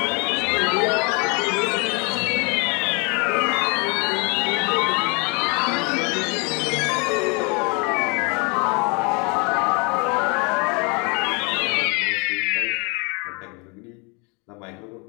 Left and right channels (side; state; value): right; quieter; 32.0 dB